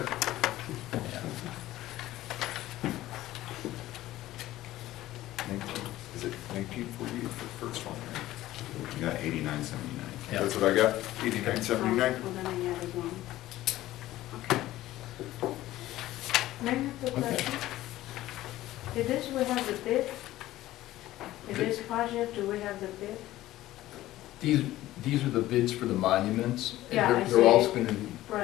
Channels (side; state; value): right; quieter; 15.5 dB